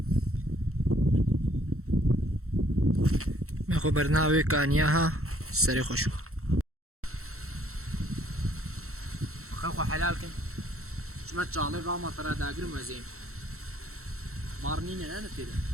مخو برناوي كانياها سري خوشو خلقو حلال كن شما تشالي راما ترى داقر مزين مارنين انا كده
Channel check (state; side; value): late; left; 0.63 ms